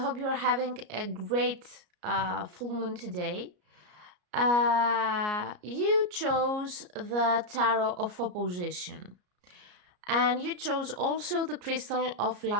you are having a great full moon today. You chose the Tarot of Opposition, and you chose also the crystal of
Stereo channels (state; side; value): late; left; 33 ms